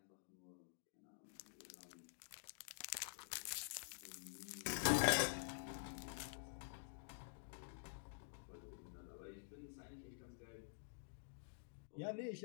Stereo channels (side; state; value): right; silent; digital silence